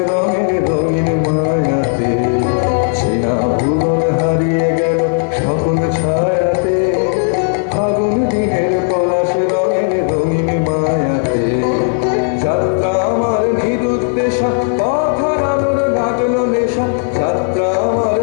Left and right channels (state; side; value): silent; right; 70 dB below the other